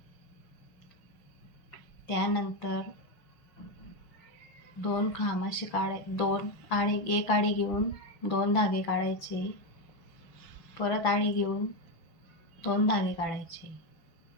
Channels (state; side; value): late; right; 6.0 ms